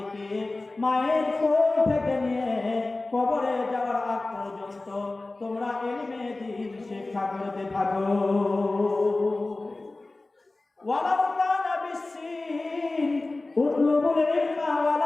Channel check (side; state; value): right; quieter; 3.1 dB